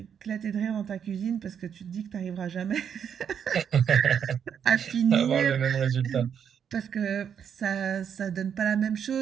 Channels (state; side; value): quieter; left; 8.0 dB